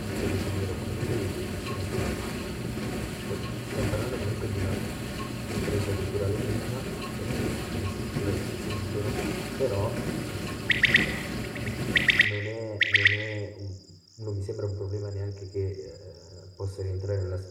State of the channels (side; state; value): both; identical; correlation 1.00